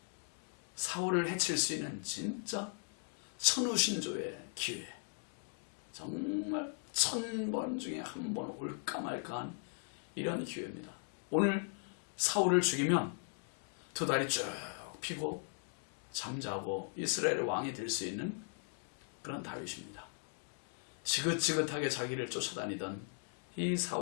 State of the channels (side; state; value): right; silent; 52 dB below the other